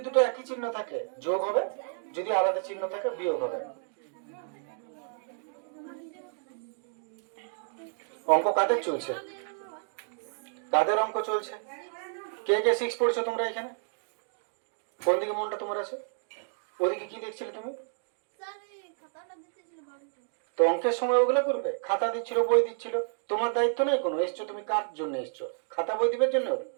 দুটো একই চিহ্ন থাকে যোগ হবে, যদি আলাদা চিহ্ন থাকে বিয়োগ হবে। অঙ্ক কাদের চলছে? কাদের অঙ্ক চলছে? কে কে 6 পড়ছো তোমরা এখানে? কোন দিকে মনটা তোমার আছে? ওদিকে কি দেখছিলে তুমি? তো অঙ্কের সময় ওগুলো করবে। খাতা দিচ্ছিল, বই দিচ্ছিল, তোমার দায়িত্ব নেই কোনো। এসছো তুমি কার জন্য এসছো? খাতা বই দিবার জন্য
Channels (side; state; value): left; silent; digital silence